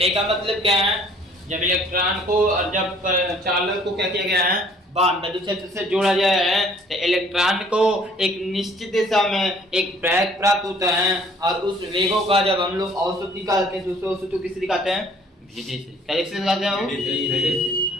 का मतलब क्या है, जब इलेक्ट्रॉन को और जब चालक को क्या किया गया है, विद्युत क्षेत्र से जोड़ा गया है तो इलेक्ट्रॉन को एक निश्चित दिशा में एक वेग प्राप्त होता है और उस वेगों का जब हम लोग औसत निकालते हैं तो उस औसत को किससे दिखाते हैं, भेदे से। क्या से दिखाते हैं, भेदे से।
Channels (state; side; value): normal; both; correlation 0.57